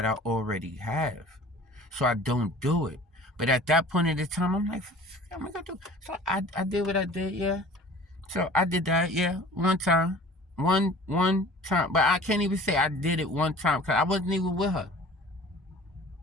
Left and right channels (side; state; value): both; normal; correlation 0.45